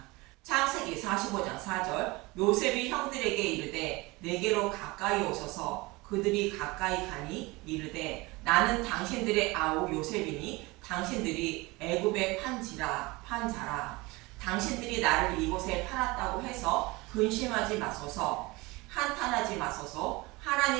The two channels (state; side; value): quieter; left; 23.2 dB